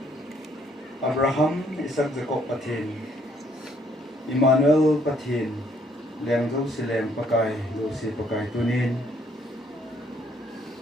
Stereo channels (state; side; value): normal; both; correlation 0.67